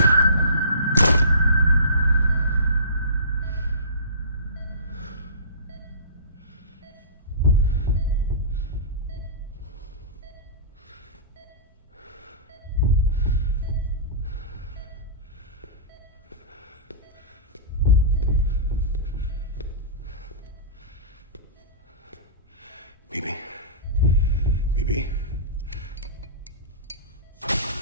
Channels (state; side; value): inverted; both; correlation -0.33